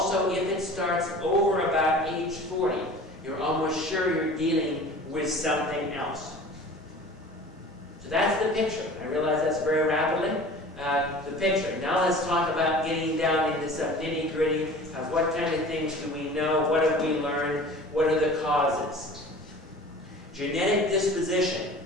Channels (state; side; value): normal; both; correlation 0.42